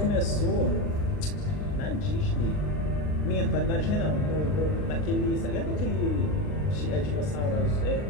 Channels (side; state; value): right; late; 39 ms